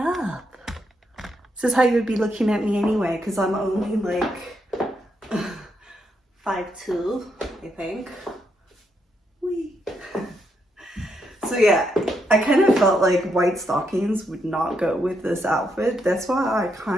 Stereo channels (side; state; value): both; normal; correlation 0.79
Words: This is how you would be looking at me anyway, because I'm only like 5'2", I think. Whee. So yeah, I kind of felt like white stockings would not go with this outfit. That's why I